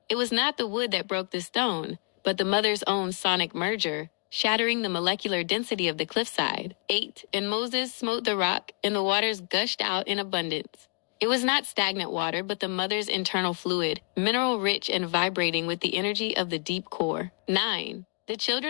It was not the wood that broke the stone, but the Mother's own sonic merger, shattering the molecular density of the cliffside. 8 And Moses smote the rock, and the waters gushed out in abundance. It was not stagnant water, but the mother's internal fluid, mineral-rich and vibrating with the energy of the deep core. 9. The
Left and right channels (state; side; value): quieter; right; 36.3 dB